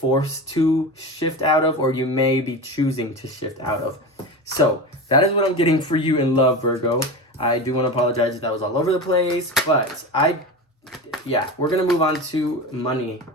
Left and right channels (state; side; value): normal; both; correlation 0.26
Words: to shift out of, or you may be choosing to shift out of. So that is what I'm getting for you in love, Virgo. I do want to apologize if that was all over the place, but we're going to move on to money.